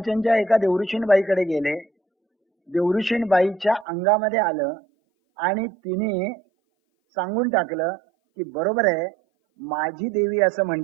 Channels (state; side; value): drops out; left; at 3.9 s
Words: एका देवऋषीणबाईकडे गेले. देवऋषीणबाईच्या अंगामध्ये आलं आणि तिने सांगून टाकलं की बरोबर आहे, माझी देवी असं